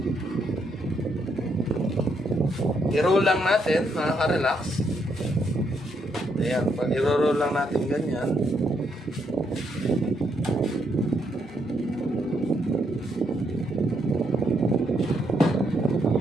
I-roll lang natin, mga ka-relax. Ayan, pag i-roll lang natin ganyan.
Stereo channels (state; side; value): normal; both; correlation 0.76